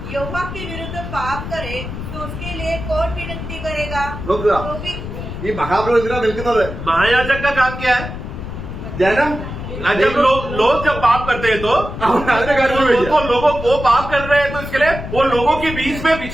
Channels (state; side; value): noise; left; rumble, 8 dB below the sound